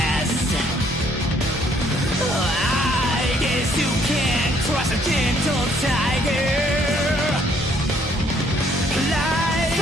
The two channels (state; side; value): normal; both; correlation 0.65